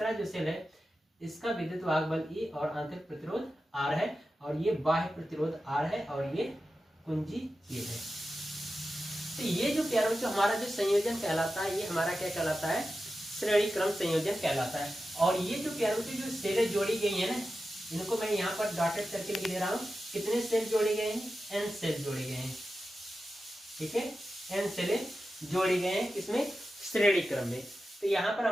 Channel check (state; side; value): normal; both; correlation 0.92